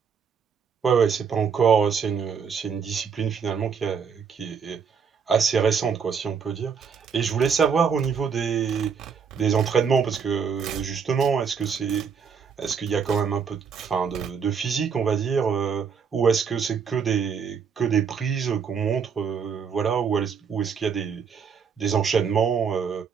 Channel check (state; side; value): quieter; left; 6.4 dB